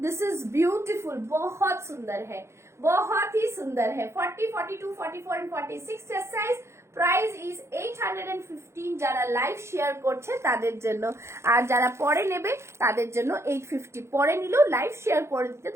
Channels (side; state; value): left; late; 0.13 ms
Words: दिस इज ब्यूटीफुल, बहुत सुंदर है, बहुत ही सुंदर है। 40, 42, 44 and 46 chest size, price is 815। যারা লাইভ শেয়ার করছে তাদের জন্য, আর যারা পরে নেবে তাদের জন্য 850। পরে নিলেও লাইভ শেয়ার করে দিতে